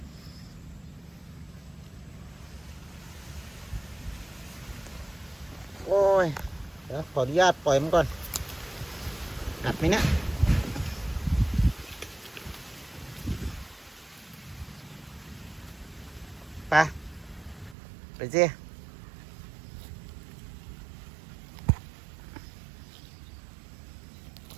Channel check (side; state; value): left; drops out; at 17.8 s